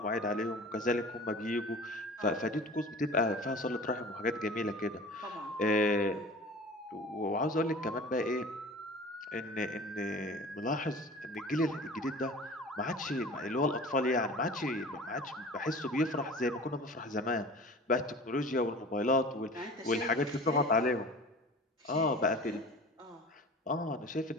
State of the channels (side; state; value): both; normal; correlation 0.39